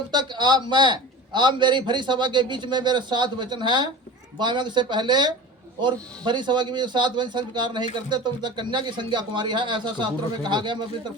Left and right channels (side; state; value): both; normal; correlation 0.34